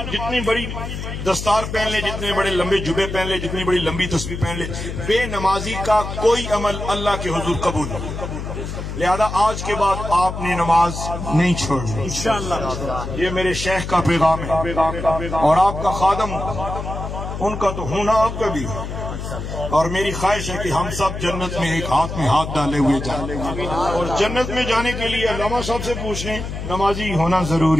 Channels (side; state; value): left; noise; hum, 6 dB below the sound